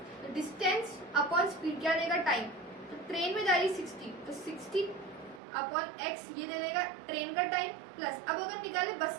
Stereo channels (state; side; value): drops out; left; at 5.4 s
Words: तो डिस्टेंस अपॉन स्पीड क्या देगा टाइम, तो ट्रेन में जा रही 60, तो 60 अपॉन एक्स ये दे देगा ट्रेन का टाइम प्लस। अब अगर निकाले